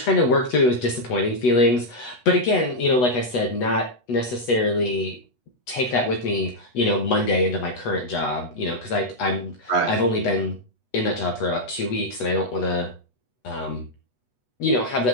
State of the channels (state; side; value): late; right; 8.1 ms